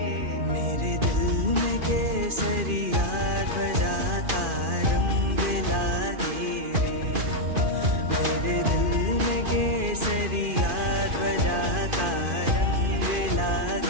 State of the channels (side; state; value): left; late; 2.5 ms